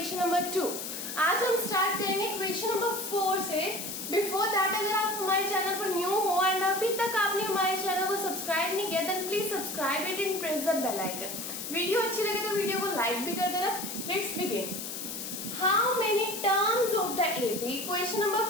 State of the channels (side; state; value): left; noise; hiss, 6 dB below the sound